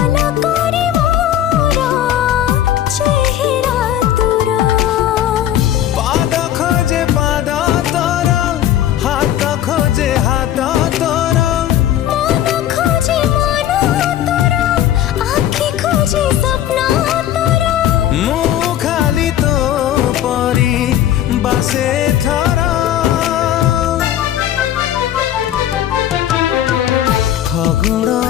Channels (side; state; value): right; quieter; 11.7 dB